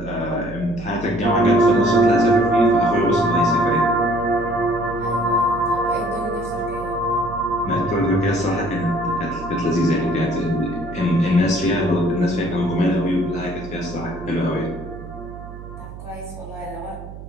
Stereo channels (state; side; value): noise; right; hum, 13 dB below the sound